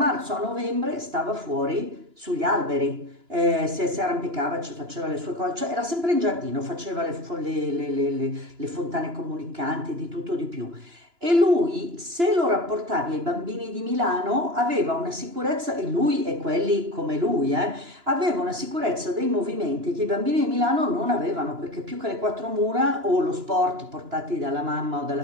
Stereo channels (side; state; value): left; late; 2.9 ms